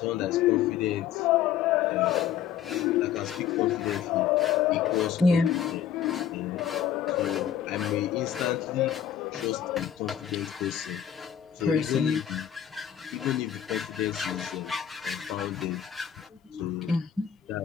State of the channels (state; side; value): quieter; right; 9.5 dB